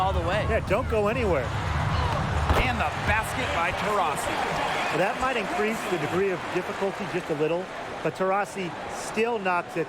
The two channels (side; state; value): both; identical; correlation 1.00